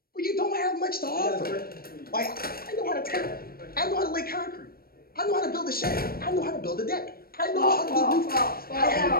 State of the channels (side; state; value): right; late; 0.44 ms